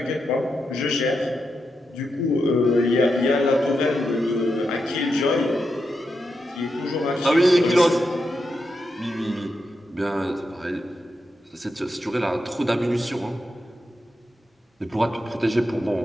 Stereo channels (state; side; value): normal; both; correlation 0.86